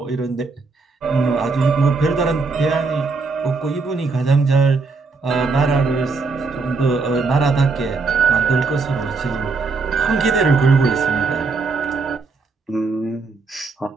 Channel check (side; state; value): left; quieter; 4.2 dB